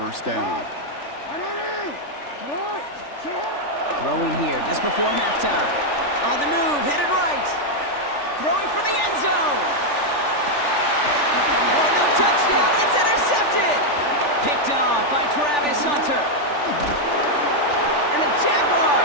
down. Throwing here just before halftime. On the move, headed right. Throwing for the end zone. Oh, no touchdown. It's intercepted. Picked off by Travis Hunter. And the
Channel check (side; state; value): right; late; 3.4 ms